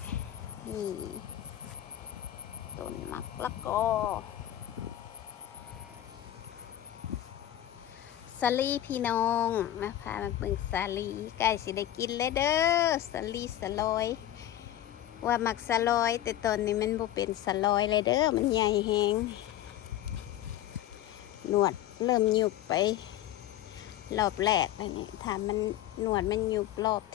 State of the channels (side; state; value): right; quieter; 12.5 dB